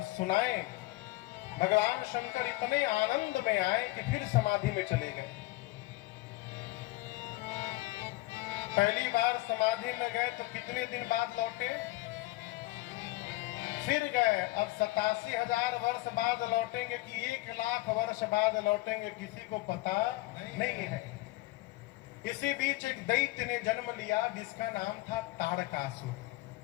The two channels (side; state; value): right; quieter; 19.6 dB